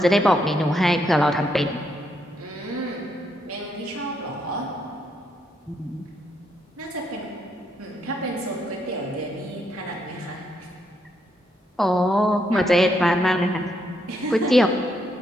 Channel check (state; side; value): normal; both; correlation 0.76